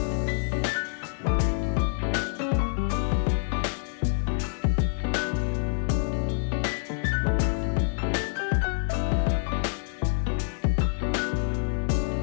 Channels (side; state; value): right; silent; 60 dB below the other